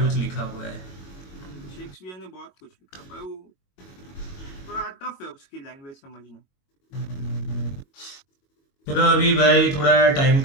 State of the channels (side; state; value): right; late; 22 ms